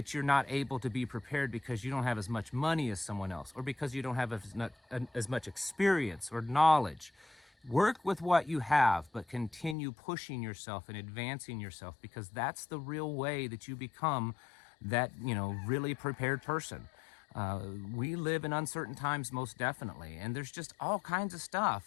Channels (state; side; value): drops out; right; at 9.8 s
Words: you're not able to be prepared because you don't have as much money as someone else, or because you don't have as much experience or knowledge. Work with what you have, but continue pushing yourself and advancing yourself, because that's the real way that you become that, really prepared person. We live in uncertain times, most definitely, and there's just all kinds of